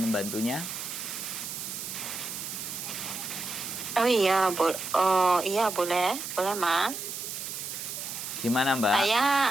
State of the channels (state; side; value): noise; right; hiss, 6 dB below the sound